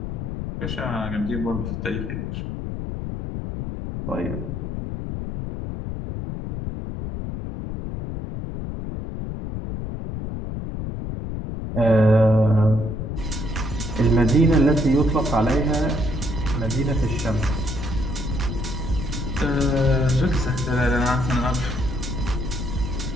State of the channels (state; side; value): noise; left; rumble, 5 dB below the sound